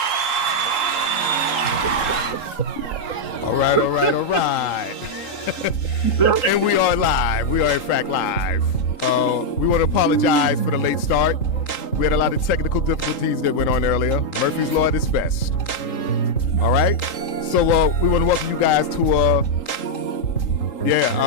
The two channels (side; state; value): right; late; 3.8 ms